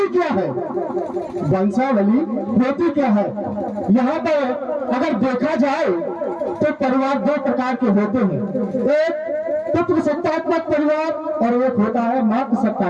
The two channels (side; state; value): both; identical; correlation 1.00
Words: क्या है? वंशावली होती क्या है? यहाँ पर अगर देखा जाए तो परिवार दो प्रकार के होते हैं। एक पुत्र सत्तात्मक परिवार और एक होता है मातृ